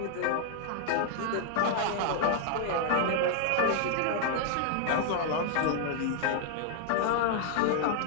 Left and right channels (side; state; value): both; different; correlation 0.00